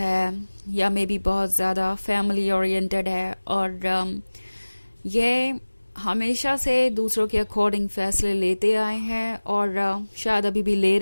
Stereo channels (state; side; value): inverted; both; correlation -1.00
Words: या मे बी बहुत ज़्यादा फैमिली ओरिएंटेड है और ये हमेशा से दूसरों के अकॉर्डिंग फैसले लेते आए हैं और शायद अभी भी ले